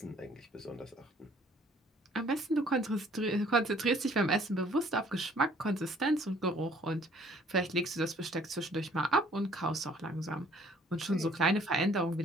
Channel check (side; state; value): both; normal; correlation 0.58